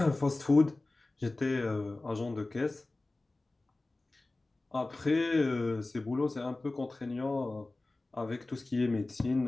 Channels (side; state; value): right; quieter; 3.0 dB